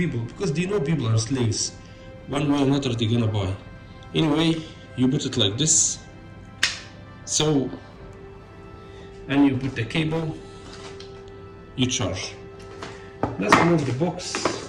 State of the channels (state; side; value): identical; both; correlation 1.00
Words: because they know people are slaves. One way or another they're gonna buy. Anyway, you put it like this. So, and you put the cable, you charge. Let's remove the